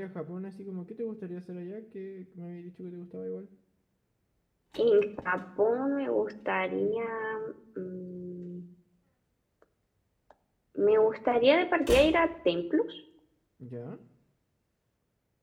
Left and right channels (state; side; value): identical; both; correlation 1.00